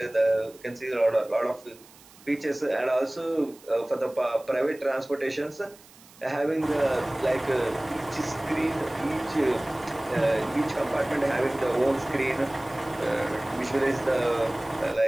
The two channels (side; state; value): right; noise; hiss, 24 dB below the sound